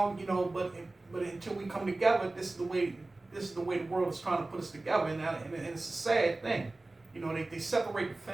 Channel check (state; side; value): quieter; left; 3.0 dB